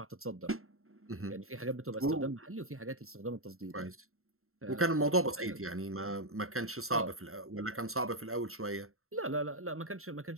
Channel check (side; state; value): left; late; 0.62 ms